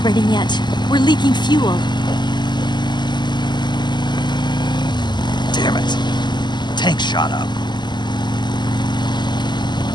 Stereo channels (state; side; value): late; right; 0.21 ms